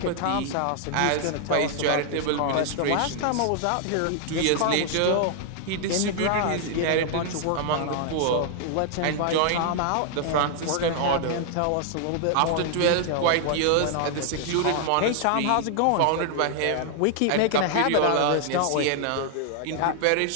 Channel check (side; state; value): both; different; correlation 0.00